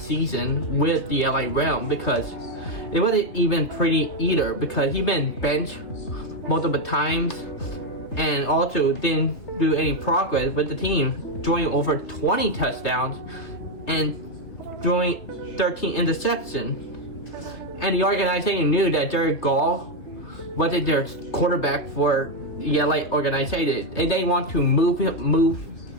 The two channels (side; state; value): right; late; 3.1 ms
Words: season with the LA Realm, because it wasn't even pretty either, because he been benched multiple times and also didn't do any progress with the team, throwing over 20 touchdowns and throwing 13 interceptions. And the organization knew that Jared Goff wasn't their quarterback for the LA organization, and they want to move